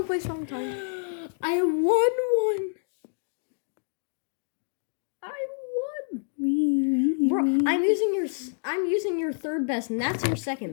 place, wrong time. I won one. Bro, I'm using your third best, and that's your second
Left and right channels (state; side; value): silent; right; digital silence